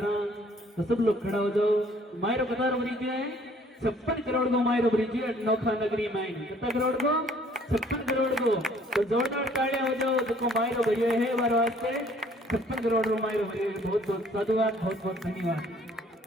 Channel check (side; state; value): both; normal; correlation 0.59